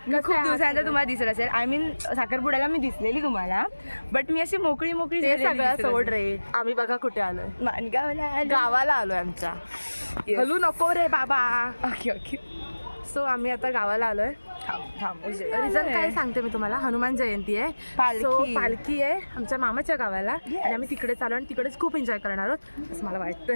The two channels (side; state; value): both; inverted; correlation -1.00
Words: दिवसानंतर तुम्हाला दिसत असेल. आय मीन साखरपुड्याला मी दिसलेली तुम्हाला, बट मी अशी मोकळी सगळ्या सोड रे. आम्ही बघा कुठे आलोय, गावाला आलोय आमच्या. हलू नको रे बाबा. Okay okay. सो आम्ही आता गावाला आलोय. रिझन काय सांगते मी तुम्हाला. हनुमान जयंती आहे, पालखी आहे आमच्या मामाच्या गावाला आणि आम्ही तिकडे चालू आणि तिकडेच खूप एन्जॉय करणार आहोत असं मला